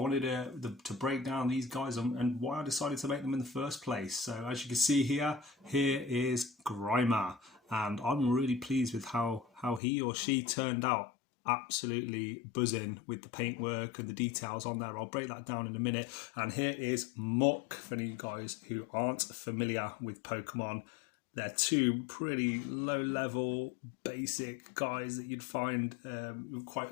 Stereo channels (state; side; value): drops out; right; at 9.8 s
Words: to break down these guys and why I decided to make them in the first place. So as you can see here is Grimer, and I'm really pleased with how he or she turned out. Absolutely buzzing with the paintwork and the details on there. I'll break that down in a minute. And here is Muk, for you guys who aren't familiar with Pokemon. They're two pretty low level basic guys that you'd find quite